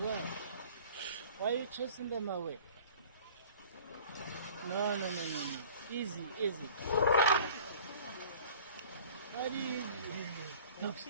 Why are you chasing them away? No. Easy.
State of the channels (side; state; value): both; inverted; correlation -0.46